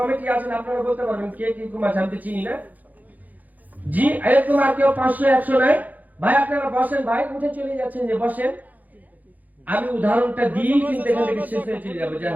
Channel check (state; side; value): late; left; 0.081 ms